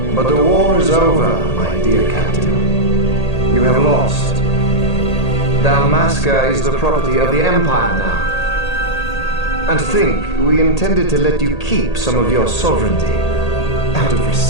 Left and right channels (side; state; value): right; late; 1.8 ms